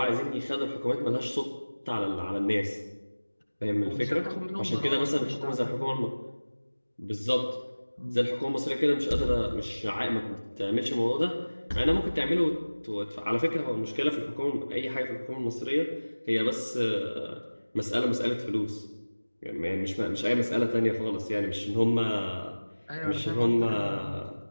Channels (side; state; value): both; inverted; correlation -1.00